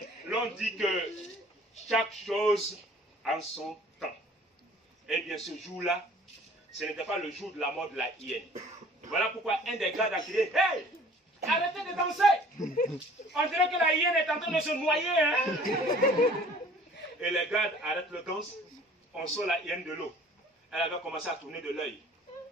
l'on dit que chaque chose en son temps. Eh bien, ce jour-là, ce n'était pas le jour de la mort de la hyène. Voilà pourquoi un des gardes a crié, hey, arrêtez de danser. On dirait que la hyène est en train de se noyer. Hein? Et les gardes arrêtent le danse. On sort la hyène de l'eau. Elle avait commencé à tourner de l'œil.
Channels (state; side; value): normal; both; correlation 0.52